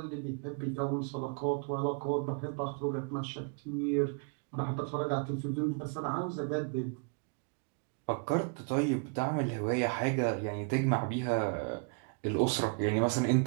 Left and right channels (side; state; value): left; quieter; 38.1 dB